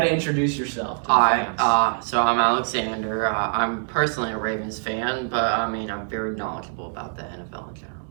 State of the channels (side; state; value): left; silent; 63 dB below the other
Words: to introduce yourself. Hi, so I'm Alexander. I'm personally a Ravens fan, but I'm very knowledgeable about the NFL in general.